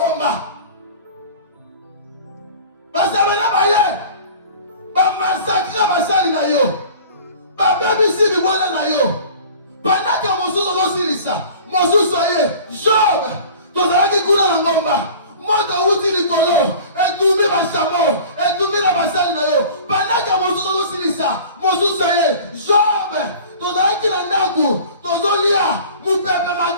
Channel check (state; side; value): inverted; both; correlation -0.43